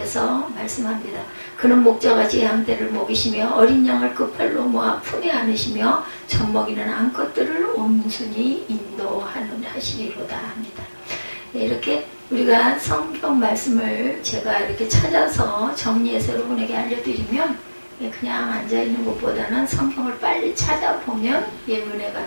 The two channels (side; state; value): both; inverted; correlation -1.00